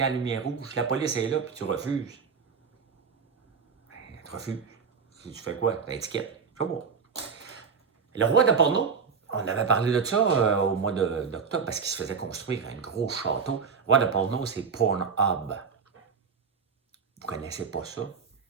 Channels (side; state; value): left; quieter; 5.9 dB